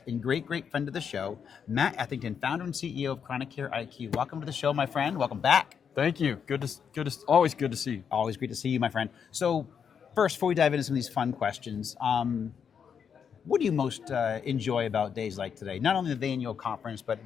and great friend of the show, Matt Ethington, founder and CEO of ChronicCareIQ. Welcome to the show, my friend. Welcome back. Thank you. Always good to see you. Always great to see you, my friend. So first, before we dive into some of these fun questions, what do you most enjoy about days like today? Not only the annual conference, but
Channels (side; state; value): right; quieter; 7.2 dB